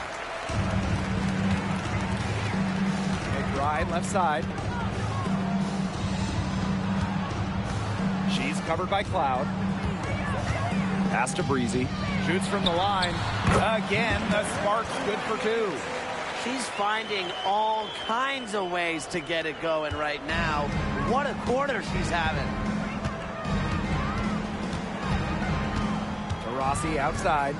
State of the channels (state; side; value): identical; both; correlation 1.00